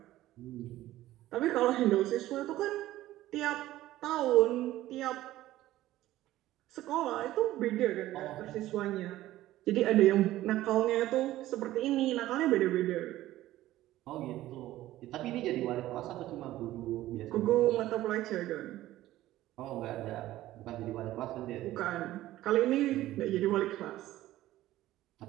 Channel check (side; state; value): left; quieter; 15.2 dB